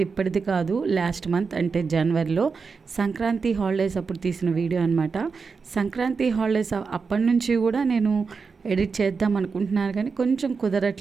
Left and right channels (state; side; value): quieter; left; 5.0 dB